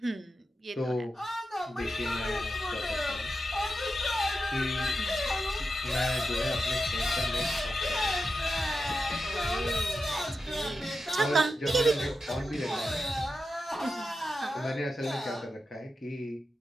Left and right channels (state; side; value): normal; both; correlation 0.89